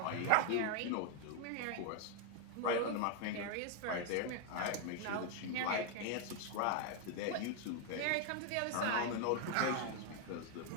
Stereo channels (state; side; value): different; both; correlation 0.01